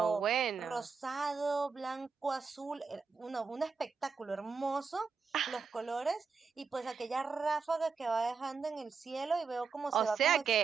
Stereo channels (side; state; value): left; quieter; 5.2 dB